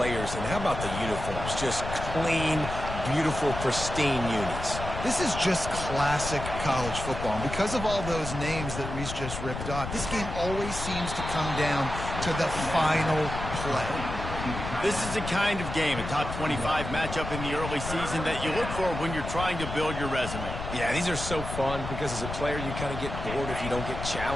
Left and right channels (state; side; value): noise; left; rumble, 7 dB below the sound